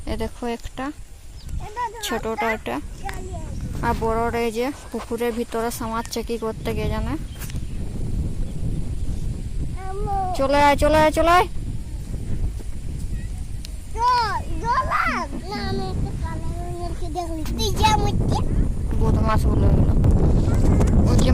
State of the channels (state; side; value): identical; both; correlation 1.00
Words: দেখো একটা ছোটটা একটা, আর বড়রা এই যে পুকুরের ভিতরে সামাচ্ছে কি করতে কে জানে। চলে আয় চলে আয় চলে আয়। বদমাস গুলো ওই যে